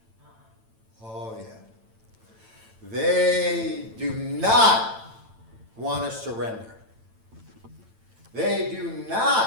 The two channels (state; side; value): late; left; 9.0 ms